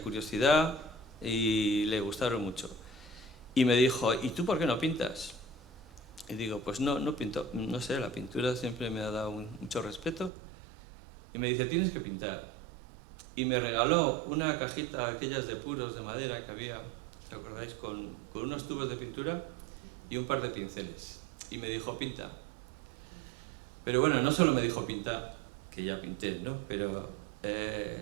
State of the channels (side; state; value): left; drops out; at 10.3 s